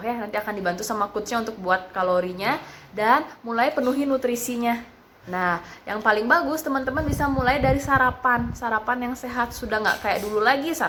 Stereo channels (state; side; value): identical; both; correlation 1.00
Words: Nanti akan dibantu sama coachnya untuk buat kalorinya dan mulai penuhi nutrisinya. Nah, yang paling bagus teman-teman bisa mulai dari sarapan yang sehat. Sudah nggak kayak dulu lagi